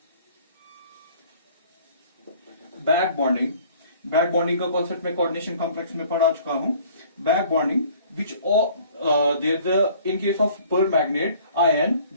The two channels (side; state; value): both; inverted; correlation -0.53